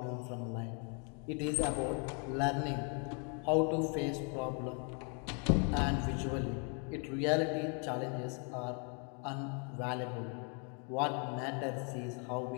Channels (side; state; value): right; quieter; 38.5 dB